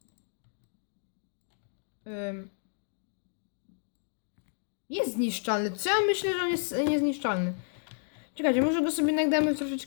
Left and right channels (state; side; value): silent; right; digital silence